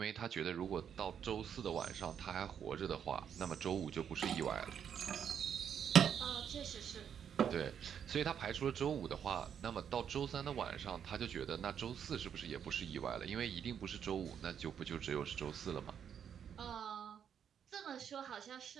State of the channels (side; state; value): left; quieter; 8.3 dB